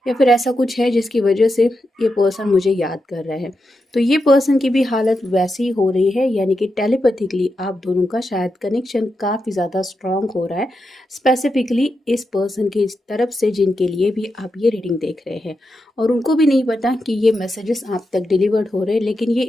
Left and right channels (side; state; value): both; normal; correlation 0.87